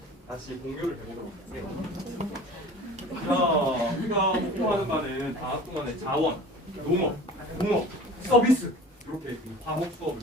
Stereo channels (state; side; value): normal; both; correlation 0.41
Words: 다시 공유를 해보도록 할게요. 자, 우리가 공부하는 바는 방학 동안에 자원, 농업, 공업, 서비스 이렇게 과목 수업을